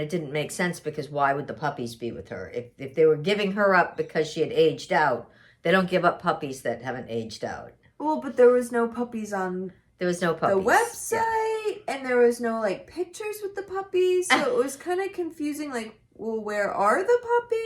didn't make sense because why would the puppies be with her? If they were giving her up because she had aged out, they don't give up puppies that haven't aged out. Well, but there was no puppies on the website, and there was no like pictures with the puppies, so it was kind of confusing. Like, well, where are the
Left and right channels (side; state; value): both; identical; correlation 1.00